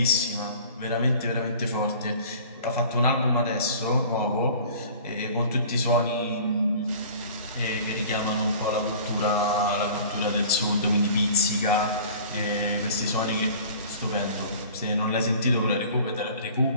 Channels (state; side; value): inverted; both; correlation -0.46